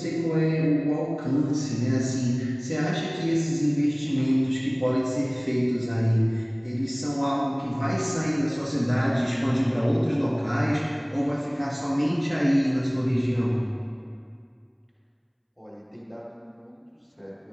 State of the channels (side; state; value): both; identical; correlation 1.00